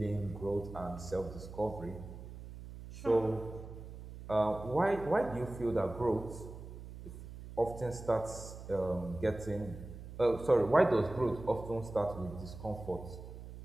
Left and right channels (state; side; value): noise; right; hum, 12 dB below the sound